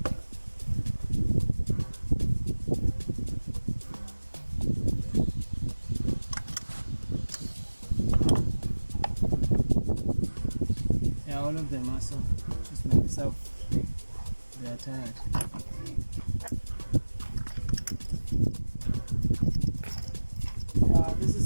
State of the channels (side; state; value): both; inverted; correlation -1.00